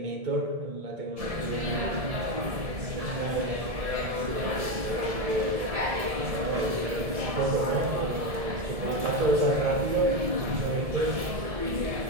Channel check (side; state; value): left; late; 1.7 ms